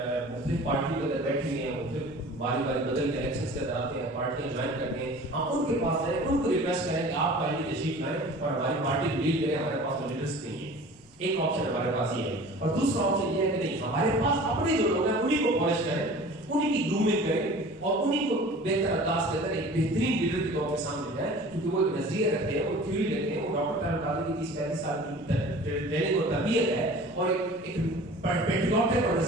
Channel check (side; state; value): both; normal; correlation 0.43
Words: مختلف پارٹیوں کے اندر بیٹھے ہوئے ہیں, مختلف باری بدل کے الیکشنز کے اندر آتے ہیں, پارٹیاں جوائن کرتے ہیں, ہم ان کے پاس جائیں, ان کو ریکویسٹ کریں کہ آپ پہلے تشریف لائیں اور ہماری پارٹی کو لیڈ کریں. ہمارے پاس تو لیڈرس نہیں ہے. ایک آپشن ہمارے پاس یہ ہے. اور دوسرا آپشن یہ ہے کہ نہیں, ہمارے پاس اپنے جو لوگ ہیں انہیں کو پالش کریں, انہیں کی گرومنگ کریں اور انہیں کو بہتر انداز کے اندر ایک بہترین لیڈر کے طور پہ سامنے جائیں, کیونکہ وہ ایک نظریہ رکھتے ہیں, وہ تھیوری رکھتے ہیں, وہ ڈاکٹر طارق قادری کی 35 سال کی ٹریننگ اور تربیت ہے اور ایک پیٹریوٹک اور